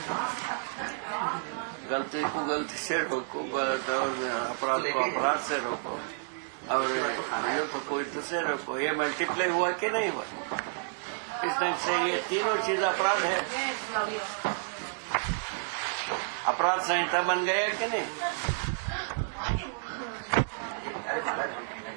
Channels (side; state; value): left; silent; digital silence